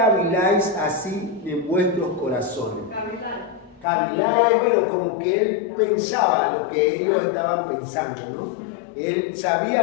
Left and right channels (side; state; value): right; drops out; at 3.9 s